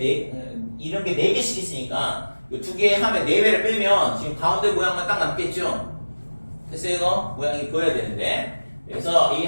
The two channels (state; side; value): inverted; both; correlation -1.00